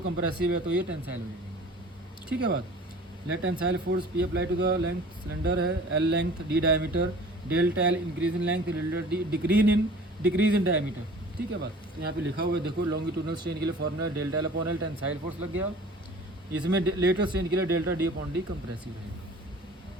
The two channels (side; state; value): both; normal; correlation 0.45